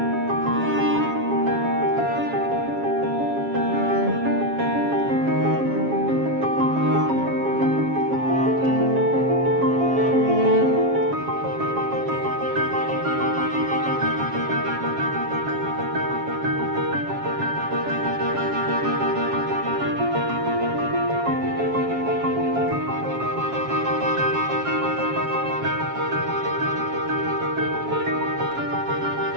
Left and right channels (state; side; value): late; left; 7.3 ms